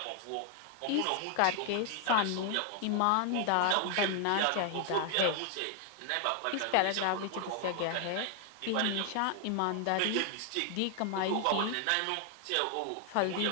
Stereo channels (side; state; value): both; different; correlation 0.00